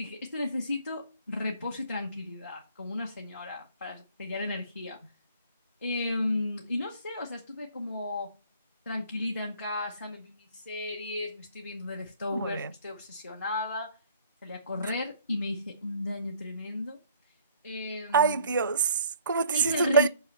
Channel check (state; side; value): inverted; both; correlation -0.56